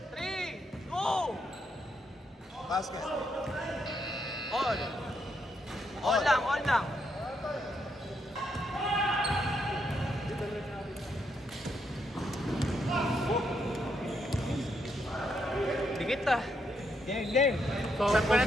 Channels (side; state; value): both; normal; correlation 0.78